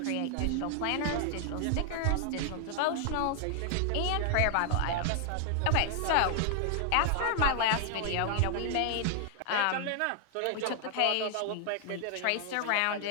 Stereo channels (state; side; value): different; both; correlation 0.00